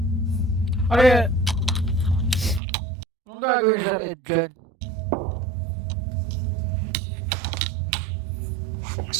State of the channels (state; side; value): drops out; left; at 2.6 s